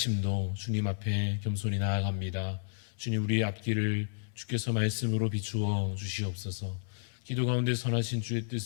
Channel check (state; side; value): silent; right; digital silence